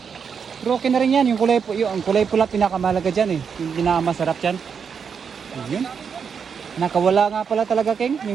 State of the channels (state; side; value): quieter; left; 6.6 dB